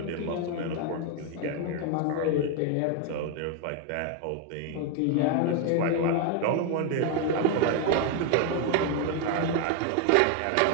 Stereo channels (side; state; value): both; different; correlation 0.01